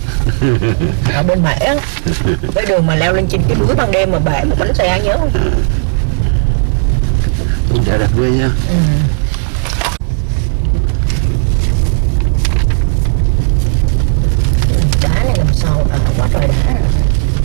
ở bên Mễ á, cái đường mà leo lên trên cái núi ban đêm mà bể một bánh xe, nhớ không? Đẹp ghê nha. Đá này làm sao quá trời đá.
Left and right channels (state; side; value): silent; left; 64 dB below the other